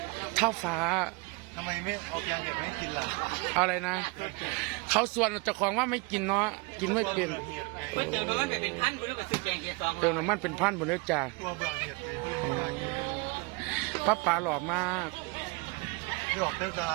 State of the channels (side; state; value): left; quieter; 27.2 dB